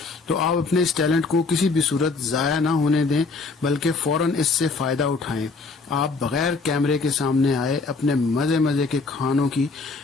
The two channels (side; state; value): right; quieter; 4.0 dB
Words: تو آپ اپنے اس ٹیلنٹ کو کسی بھی صورت ضائع نہ ہونے دیں بلکہ فوراً اس سے فائدہ اٹھائیں۔ آپ بغیر کیمرے کے سامنے آئے اپنے مزے مزے کے کھانوں کی